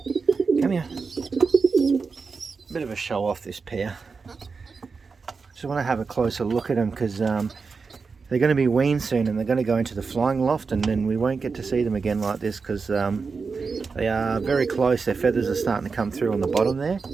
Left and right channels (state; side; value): quieter; left; 4.8 dB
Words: Come here. Bit of a show off, this pair. Just want to have a closer look at them because they're going to be weaned soon and they're going to go into the flying loft, and then we won't get to see them again like this because they are very close. Their feathers are starting to come through on the bottom there.